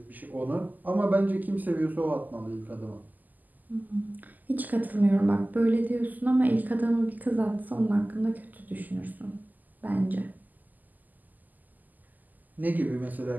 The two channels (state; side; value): late; left; 0.083 ms